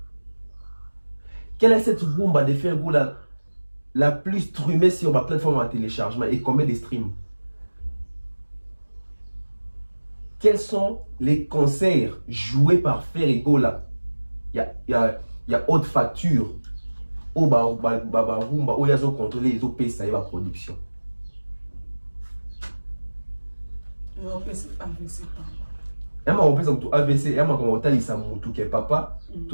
Quelle est cette rumba de Ferrego la plus streamée sur ma plateforme de téléchargement et combien de streams? Quels sont les concerts joués par Ferrego là? Il y a haute facture. Au rumba, où il y a contrôlé les OP, ça y est, la production. Il y a AVC, il y a un papa,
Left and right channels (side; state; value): both; inverted; correlation -1.00